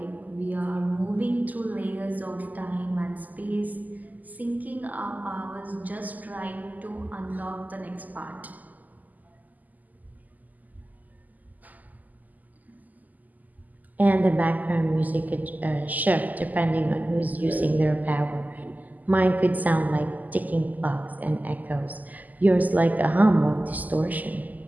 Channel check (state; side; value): late; left; 0.081 ms